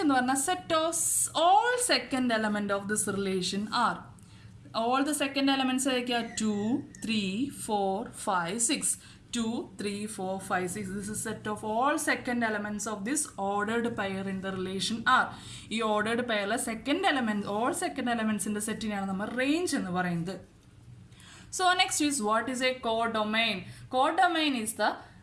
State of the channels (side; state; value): both; identical; correlation 1.00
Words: എന്ന് പറഞ്ഞാൽ set of all second element of this relation R. All the second elements are 2, 3, 4, 5, 6. 2, 3, 4, 5, 6. This is set of all second elements of this ordered pair in the relation R. ഈ ordered pair second element, all second elements in the സെറ്റിനെയാണ് നമ്മൾ range എന്ന് പറയുന്നത്. So next is what is a codomain? Codomain is the